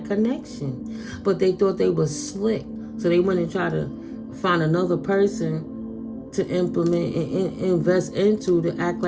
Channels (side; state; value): both; identical; correlation 1.00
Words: connection. But they thought they were slick. So they went and tried to find another person to implement and invest into, to act